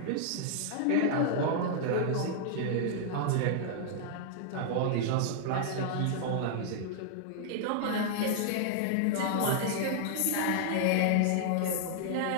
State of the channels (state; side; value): different; both; correlation -0.01